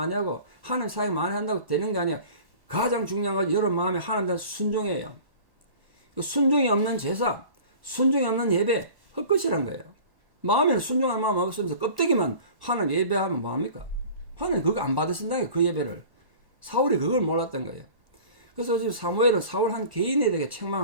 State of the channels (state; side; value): late; left; 1.0 ms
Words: 하고 하나님 사역 많이 한다고 되는 게 아니야. 가장 중요한 건 여러분 마음에 하나님 대한 순종이에요. 순종이 없는 제사, 순종이 없는 예배 헛것이란 거예요. 마음에는 순종할 마음 없으면서 껍데기만 하나님 예배하면 뭐합니까? 하나님 그거 안 받으신다는 그 예배를. 사울이 그걸 몰랐던 거예요. 그래서 지금 사무엘은 사울 한 개인에 대해